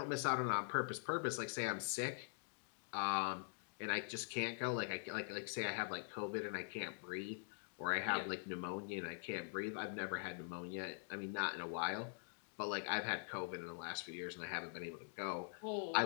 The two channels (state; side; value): silent; right; digital silence